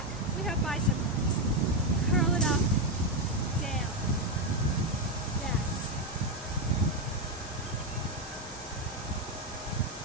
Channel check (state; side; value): normal; both; correlation 0.06